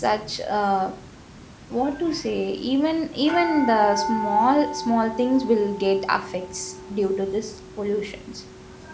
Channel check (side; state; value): both; identical; correlation 1.00